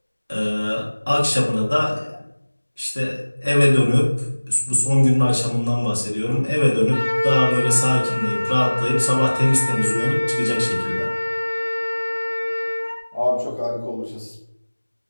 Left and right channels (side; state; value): both; inverted; correlation -1.00